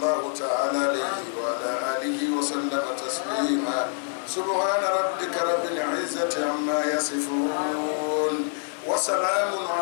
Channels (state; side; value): silent; right; digital silence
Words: تعالى عليه وعلى آله وسلم تسليما سبحان ربك رب العزة عما يصفون وسلام